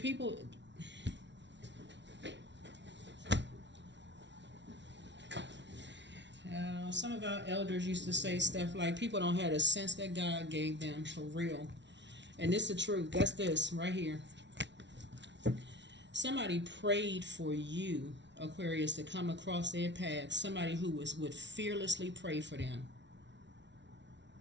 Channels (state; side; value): late; left; 0.51 ms